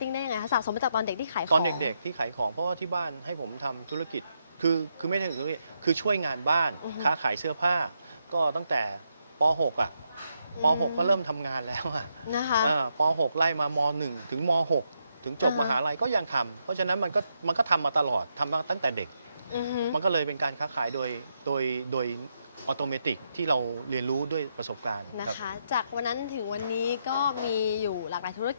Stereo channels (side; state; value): both; inverted; correlation -0.81